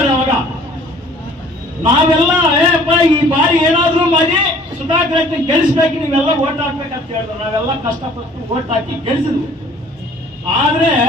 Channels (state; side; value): normal; both; correlation 0.54